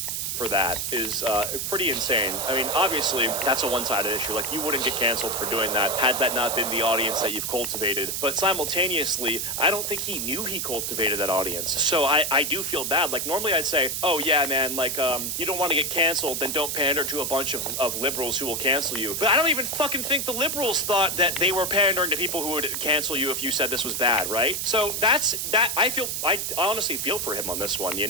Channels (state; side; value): noise; right; hiss, 2 dB below the sound